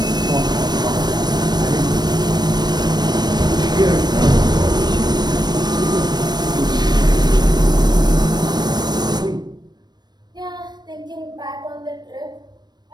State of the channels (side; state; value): left; late; 0.20 ms